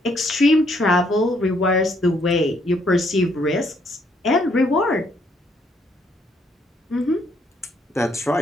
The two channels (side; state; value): both; normal; correlation 0.70